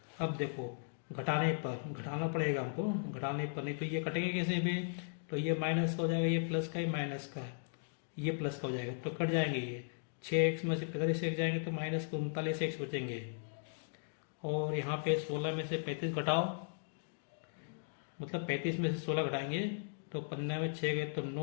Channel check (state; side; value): silent; right; digital silence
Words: अब देखो घटाने पर, घटाना पड़ेगा हमको, घटाने पर नहीं तो ये कटेंगे कैसे भी? तो ये माइनस का हो जाएगा, ये प्लस का, ये माइनस का, ये प्लस का हो जाएगा, तो कट जाएंगे। ये 6x में से 45x जाएंगे तो माइनस 39x बचेंगे, और यहाँ पे 16 में से 35 घटाओ मतलब 35 में से 16 घटाएंगे तो 15 में 6 गए तो